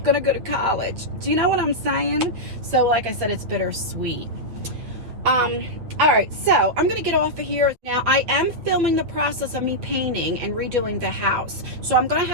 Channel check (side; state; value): left; late; 8.3 ms